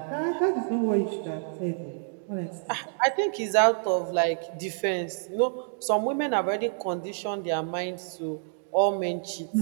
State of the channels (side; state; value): left; silent; digital silence